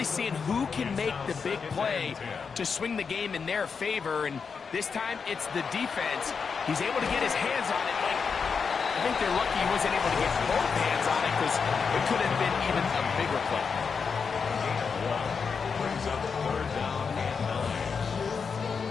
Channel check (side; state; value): right; quieter; 5.7 dB